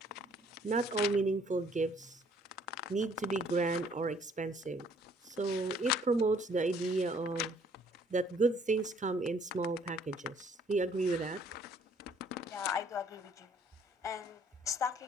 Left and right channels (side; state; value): both; normal; correlation 0.61